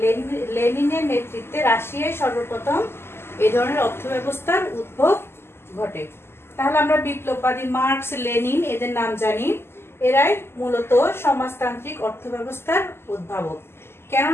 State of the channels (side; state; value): right; late; 0.12 ms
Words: লেনিনের নেতৃত্বে রাশিয়ায় সর্বপ্রথম এই ধরনের অর্থব্যবস্থার উদ্ভব ঘটে। তাহলে আমরা বিপ্লববাদী মার্কস, লেনিন এদের নাম জানি। এরাই মূলত সমাজতান্ত্রিক অর্থব্যবস্থার উদ্ভাবক।